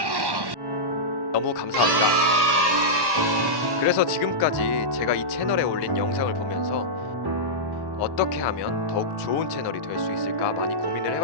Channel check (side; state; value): left; late; 1.1 ms